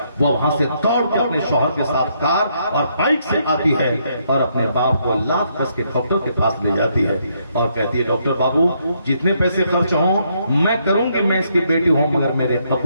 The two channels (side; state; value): both; inverted; correlation -0.74